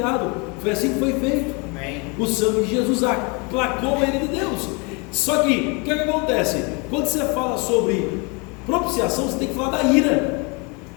Foi assim que foi feito. Amém. O sangue de Jesus aplacou a ira de Deus. Só que, o que acontece? Quando você fala sobre propiciação, você tem que falar da ira.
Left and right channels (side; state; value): right; quieter; 30.8 dB